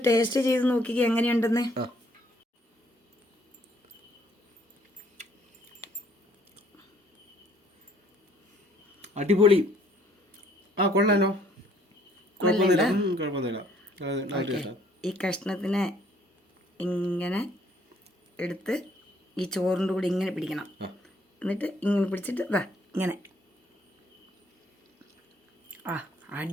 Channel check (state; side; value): normal; both; correlation 0.63